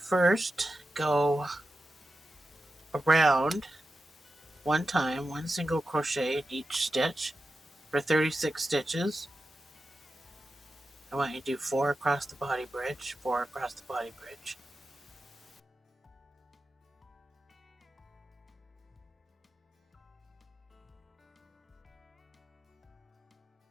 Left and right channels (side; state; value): both; normal; correlation 0.92